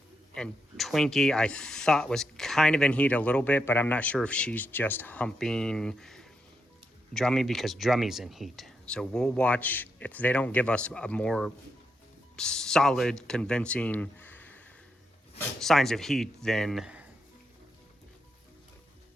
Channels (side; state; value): both; normal; correlation 0.83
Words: And Twinkie, I thought was kind of in heat a little bit, but I'm not sure if she's just humping Drummy because Drummy's in heat. So we'll watch. If they don't give us a more solid, convincing signs of heat, then